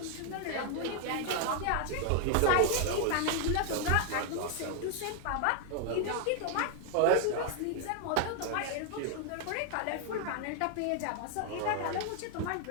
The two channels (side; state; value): both; different; correlation 0.00